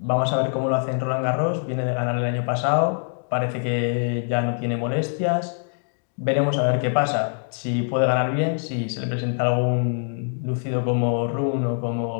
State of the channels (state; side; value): silent; right; digital silence